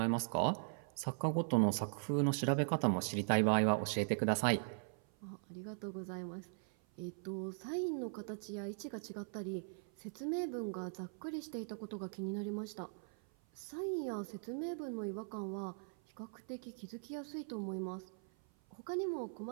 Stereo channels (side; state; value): left; silent; 51 dB below the other